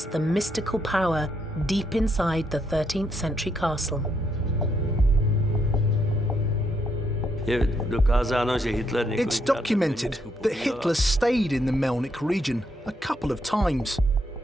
the mystical power deep inside the 13th century castle. It's documented that Hitler stayed in the Melnik region a couple of times.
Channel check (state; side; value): normal; both; correlation 0.76